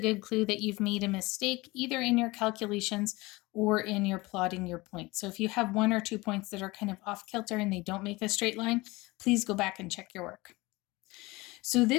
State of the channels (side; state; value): right; quieter; 22.2 dB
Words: clue that you've made a mistake either in your calculations or in your plotting your points. So if you have 1 or 2 points that are kind of off kilter and they don't make a straight line, please go back and check your work. So